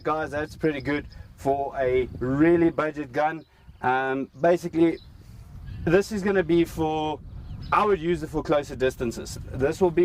guys. That's pretty good for a really budget gun. Basically, this is going to be for, I would use it for closer distances. This will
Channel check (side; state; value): both; identical; correlation 1.00